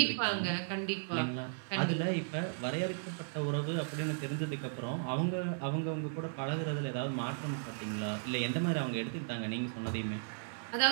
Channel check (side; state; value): left; silent; 54 dB below the other